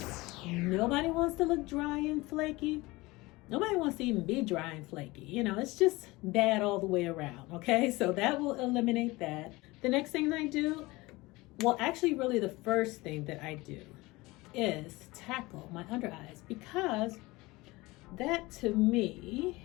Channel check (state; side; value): quieter; right; 21.6 dB